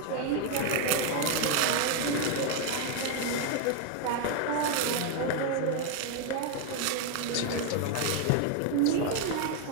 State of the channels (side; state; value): both; different; correlation 0.01